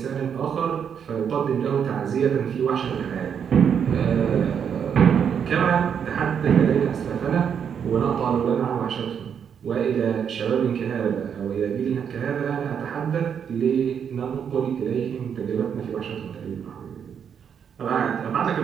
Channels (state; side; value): quieter; left; 7.7 dB